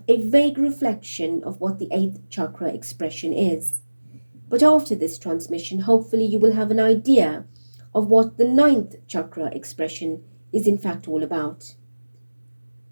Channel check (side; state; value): both; inverted; correlation -1.00